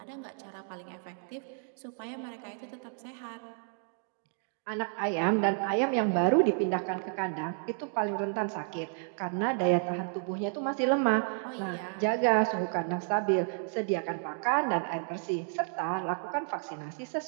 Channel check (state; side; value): silent; left; 57 dB below the other